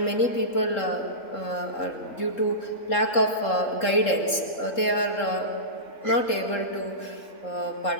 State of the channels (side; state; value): right; late; 3.7 ms